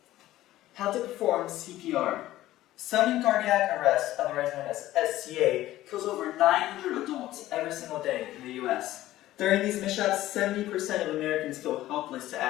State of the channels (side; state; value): right; quieter; 15.1 dB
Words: How to perform CPR. Sudden cardiac arrest, otherwise known as SCA, kills over 900 adults every single day in the US. During these mishaps, 70% of Americans feel helpless to